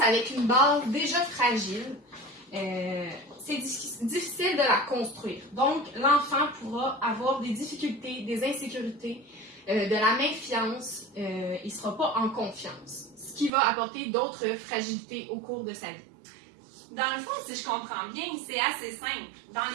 avec une base déjà fragile, c'est difficile de la construire. Donc, l'enfant pourra avoir des difficultés, des insécurités, de la méfiance, il ne sera pas en confiance, ce qui va apporter d'autres fragilités au cours de sa vie. Dans le fond, si je comprends bien, c'est assez simple. Dans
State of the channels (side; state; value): left; drops out; at 13.5 s